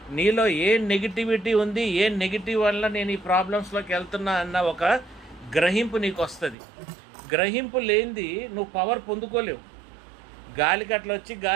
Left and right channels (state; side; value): drops out; left; at 6.6 s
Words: నీలో ఏ నెగిటివిటీ ఉంది, ఏ నెగిటివ్ వల్ల నేను ఈ ప్రాబ్లమ్స్లోకి వెళ్తున్నా అన్న ఒక గ్రహింపు నీకు వస్తుంది. గ్రహింపు లేనిది నువ్వు పవర్ పొందుకోలేవు. గాలికట్లు వచ్చి